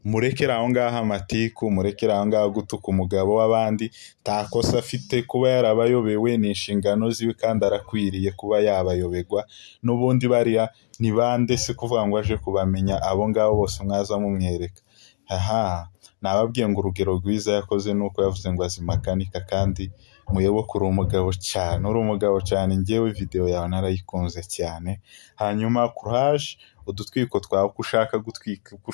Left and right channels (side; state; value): right; silent; digital silence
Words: Murekera aho ngaho amatiku, murekera aho ngaho gutuka umugabo w'abandi, takosa afite kuba yarabayobewe ni inshingano ziwe kandi arakwiriye kuba yabayobegwa. N'ubundi bariya ni bande se kuvuga ngo aje kubamenya abo ngabo bose mwaza mumwereka? Nababwiye ngo urugero rwiza yakoze nuko yavuze ngo azimakanika, kandi muyoboke uri umugabo cyane, njyewe video yawe narayikunze cyane. Hanyuma courage, udutwiko twawe uko ushaka gutwika, uko